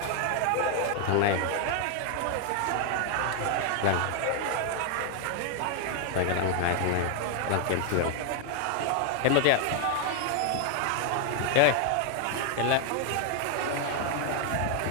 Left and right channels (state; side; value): different; both; correlation 0.00